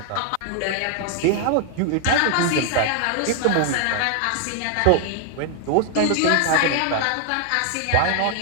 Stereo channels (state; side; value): different; both; correlation 0.00